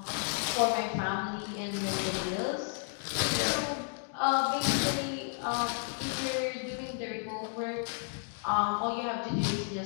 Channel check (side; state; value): right; silent; 56 dB below the other